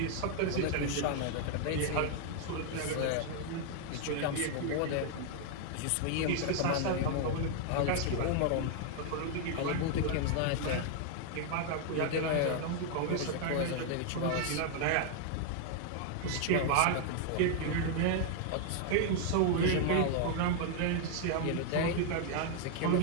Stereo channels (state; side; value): different; both; correlation 0.00